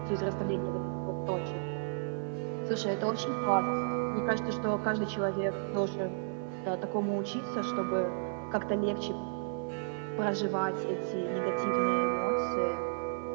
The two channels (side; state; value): left; silent; digital silence